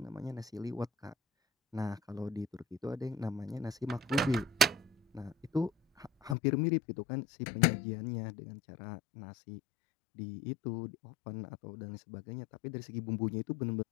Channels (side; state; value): right; drops out; at 6.4 s